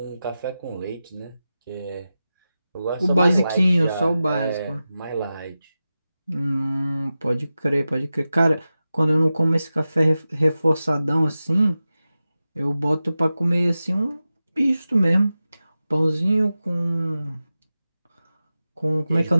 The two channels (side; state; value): both; inverted; correlation -0.93